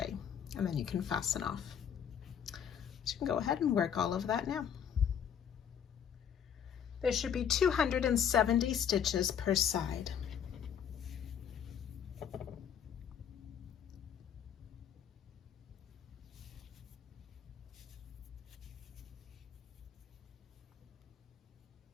and then you can fasten off. So you can go ahead and work all of that now. There should be 270 stitches per side.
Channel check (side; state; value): right; quieter; 8.4 dB